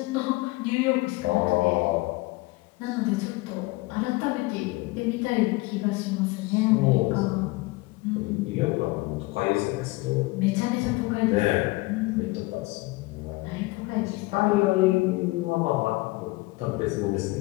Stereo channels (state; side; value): quieter; right; 22.3 dB